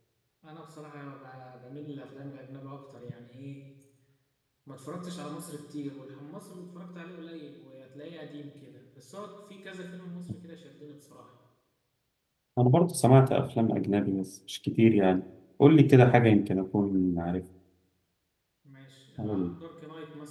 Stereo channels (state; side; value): identical; both; correlation 1.00